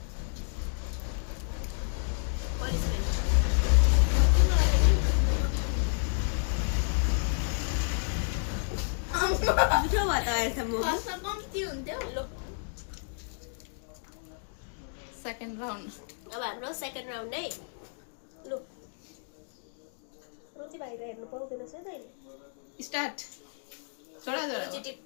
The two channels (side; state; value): right; silent; 57 dB below the other